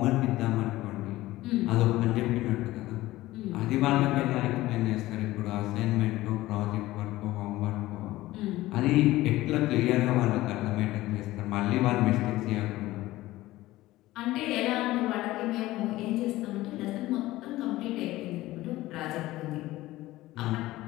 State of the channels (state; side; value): quieter; right; 17.1 dB